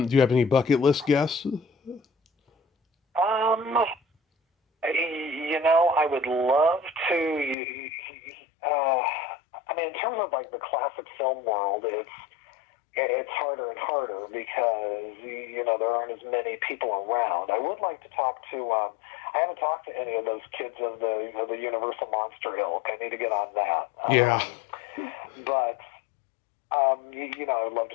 you have any bucket list guests? Um, I would love to. Uh, in terms of like the classic film world, it's harder and harder because there aren't as many people around. I would like to talk to. I haven't talked to any of those kids of the Universal Monster ilk. I need to get on that. Yeah. But I would love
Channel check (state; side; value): drops out; right; at 7.6 s